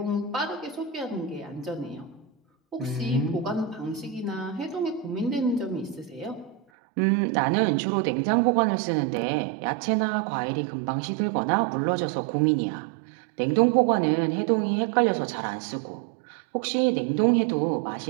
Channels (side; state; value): left; drops out; at 6.6 s